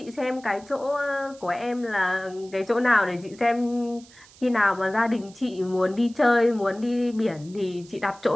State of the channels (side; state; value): right; noise; hiss, 24 dB below the sound